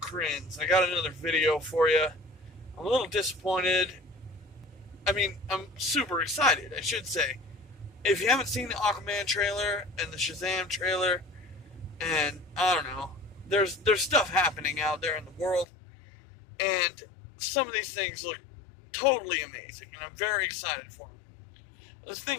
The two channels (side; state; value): right; drops out; at 15.7 s